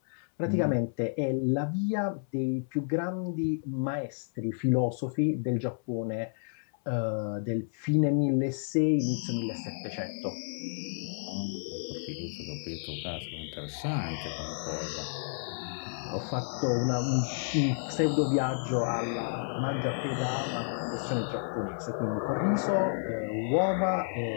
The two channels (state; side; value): silent; right; 57 dB below the other